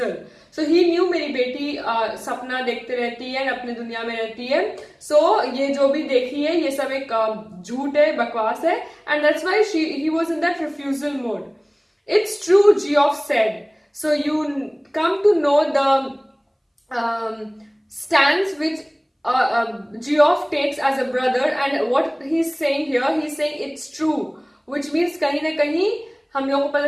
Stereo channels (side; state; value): both; identical; correlation 1.00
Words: So, he knew मेरी बेटी सपना देखते रहती है, अपने दुनिया में रहती है. So, ये जो भी देखी है, ये सब एक झूठ है, बकवास है. And that's why he was in that refusal mode. It's true, Geoff said. So, you come to know the stance which Geoff takes as a brother, and what he's saying here, he's saying it's true, which means कहीं ना कहीं हम लोगों को